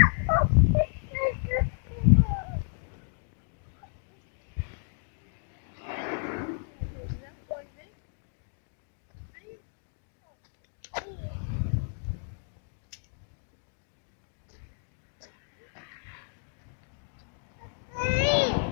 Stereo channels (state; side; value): silent; right; 57 dB below the other